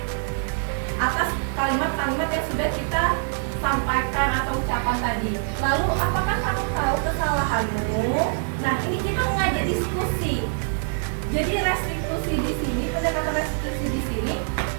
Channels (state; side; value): silent; left; 61 dB below the other